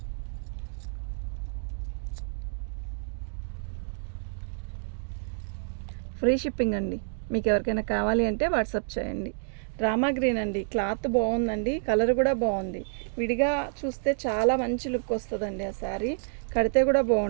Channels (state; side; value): silent; left; digital silence